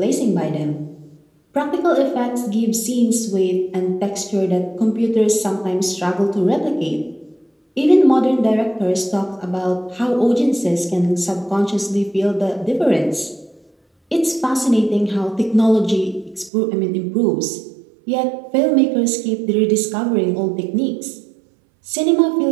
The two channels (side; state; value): left; drops out; at 16.5 s